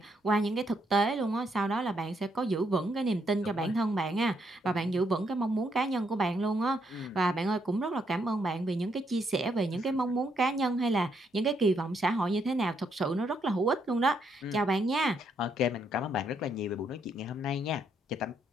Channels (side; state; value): both; normal; correlation 0.75